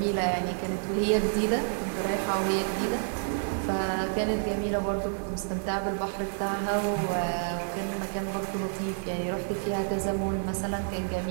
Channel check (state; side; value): silent; left; digital silence